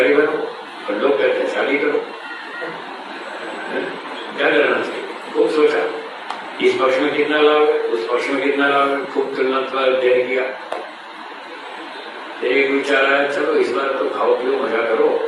बनो और लोग कहते हैं शादी करो, क्या करना चाहिए? खूब सोचा, इस पक्ष में कितना लाभ है, उस पक्ष में कितना लाभ है, खूब तुलनात्मक अध्ययन किया। एक विचार आया, चलो इस बार तो खाओ पियो मजा करो,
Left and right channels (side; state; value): both; identical; correlation 1.00